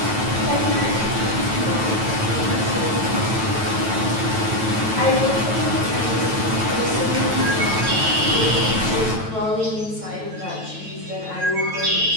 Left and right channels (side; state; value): left; late; 9.1 ms